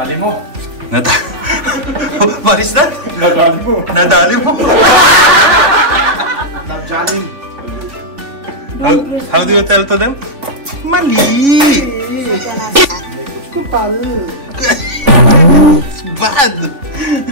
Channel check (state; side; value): late; left; 3.5 ms